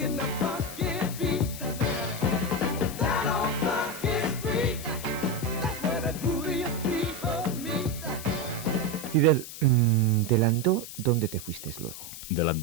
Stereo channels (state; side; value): noise; left; hiss, 11 dB below the sound